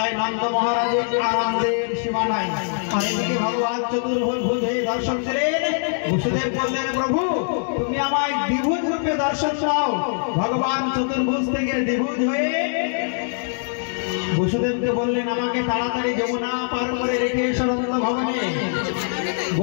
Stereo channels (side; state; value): right; silent; digital silence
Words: নন্দ মহারাজের আনন্দের সীমা নাই। আর এদিকে ভগবান চতুর্ভুজ হয়ে দর্শন দিলেন। বসুদেব বললেন প্রভু তুমি আমায় দ্বিভুজ রূপে দর্শন দাও। ভগবান চতুর্ভুজ থেকে দ্বিভুজ হয়ে বসুদেবকে বললেন আমাকে তাড়াতাড়ি যমুনা পার করে রেখে এসো নন্দ ভবনে।